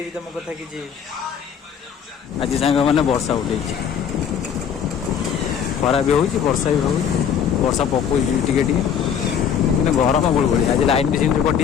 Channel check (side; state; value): right; quieter; 7.9 dB